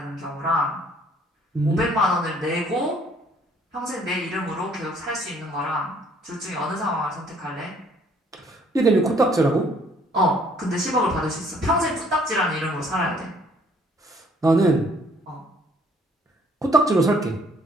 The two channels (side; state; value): both; normal; correlation 0.62